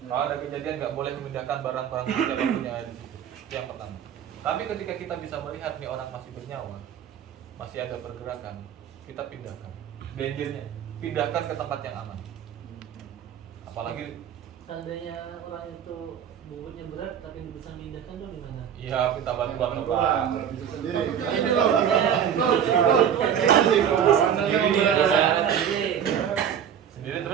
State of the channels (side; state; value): left; quieter; 8.8 dB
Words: Kalau ada kejadian nggak boleh memindahkan barang-barang yang kita punya di situ. Itu yang pertama. Tapi ketika kita bisa melihat nih orang masih bernyawa, masih ada pergerakan, kita pindahkan. Dangernya, pindahkan ke tempat yang aman. Apalagi Seandainya orang itu bobotnya berat tapi bisa memindahkan tuh gimana? iya kita bantuan ke Pak. Bisa sendiri. Ini Iya. Sendiri